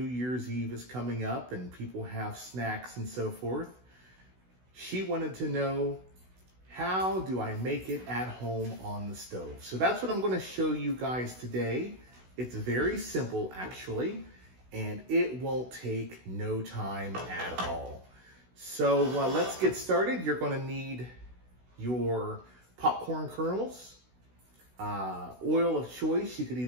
Year's Eve is coming up and people have snacks and so forth. She wanted to know, how do I make it at home on the stove? So that's what I'm going to show you guys today. It's very simple actually, and it won't take no time at all. So let's get started. You're going to need your popcorn kernels, oil of choice. You could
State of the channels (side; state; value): left; late; 16 ms